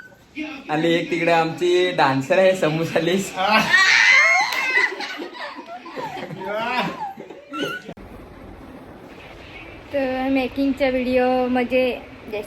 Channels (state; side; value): identical; both; correlation 1.00